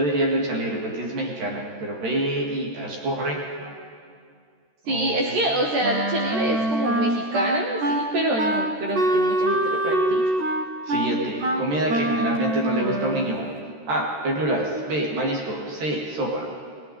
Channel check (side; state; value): left; late; 13 ms